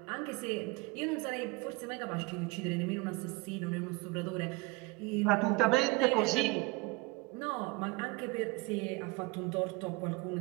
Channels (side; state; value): left; quieter; 24.3 dB